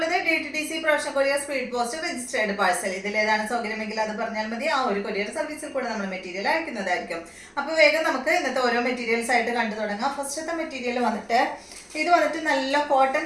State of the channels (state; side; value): identical; both; correlation 1.00